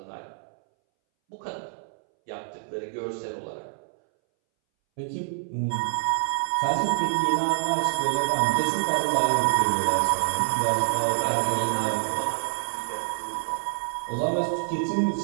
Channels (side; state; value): left; silent; 61 dB below the other